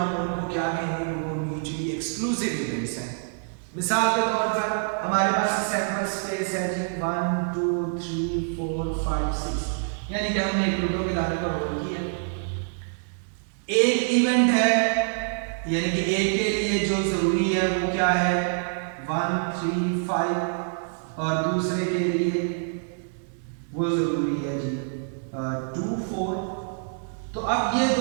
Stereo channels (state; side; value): silent; left; digital silence